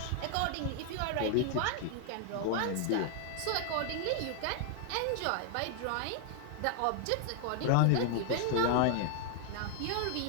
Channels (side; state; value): both; different; correlation 0.00